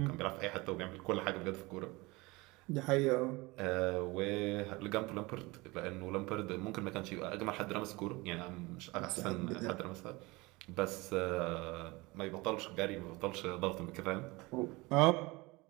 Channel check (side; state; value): left; quieter; 23.4 dB